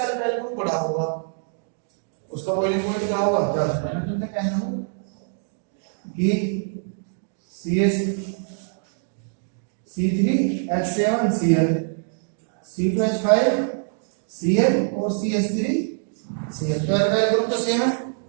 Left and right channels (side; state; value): left; silent; digital silence